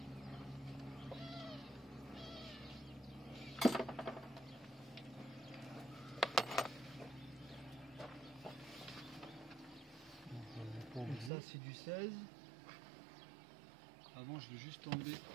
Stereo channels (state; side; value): drops out; left; at 11.3 s